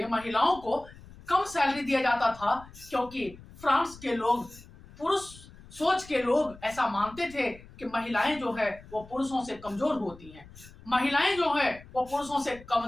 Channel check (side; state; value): left; noise; rumble, 20 dB below the sound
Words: महिलाओं को कम सैलरी दिया जाता था, क्योंकि फ्रांस के लोग, पुरुष सोच के लोग ऐसा मानते थे कि महिलाएं जो है वो पुरुषों से कमजोर होती हैं, महिलाएं जो है वो पुरुषों से